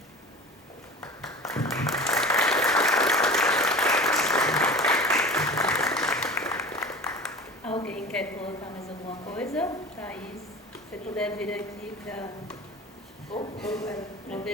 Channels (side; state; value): both; normal; correlation 0.36